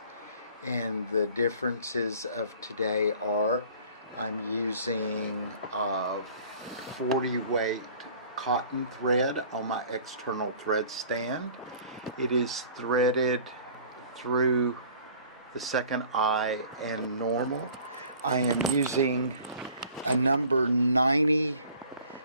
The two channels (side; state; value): both; inverted; correlation -0.50